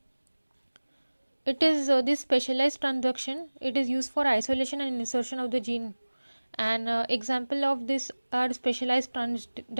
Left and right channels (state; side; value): inverted; both; correlation -1.00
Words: It is this specialized transduction, it is used for isolation and insertion of the gene, and example of this are specialized